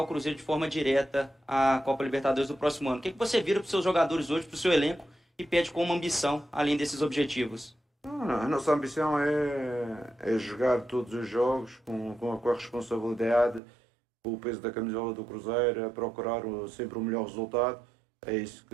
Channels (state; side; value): drops out; left; at 13.6 s